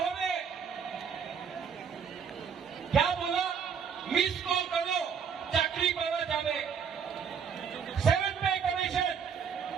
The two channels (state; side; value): quieter; left; 6.9 dB